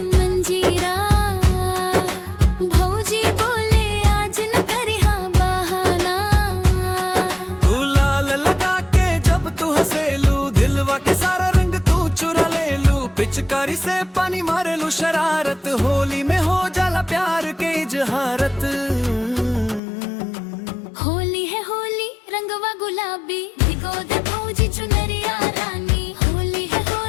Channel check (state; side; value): drops out; right; at 19.8 s